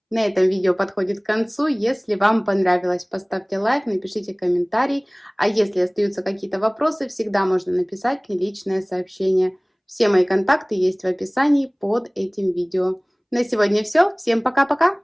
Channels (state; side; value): identical; both; correlation 1.00